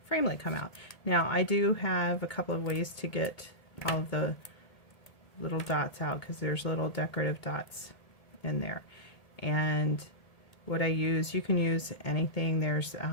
framelit come out. Now, I do have a couple of ways to get all of the little dots out because there's little decorative dots in there. And what I use, you can use anything. There's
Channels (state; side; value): late; right; 1.7 ms